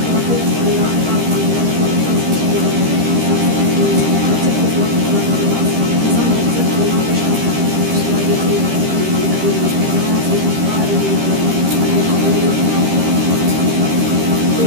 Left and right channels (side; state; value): left; late; 13 ms